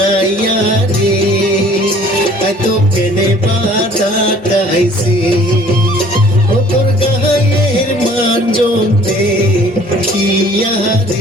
রে এত কেনে বাজা গাইছে ও তোর গায়ের মানজন দেখিয়া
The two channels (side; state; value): both; normal; correlation 0.53